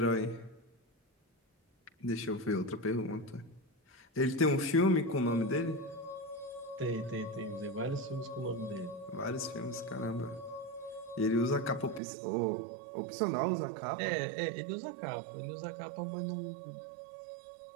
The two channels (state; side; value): drops out; left; at 12.0 s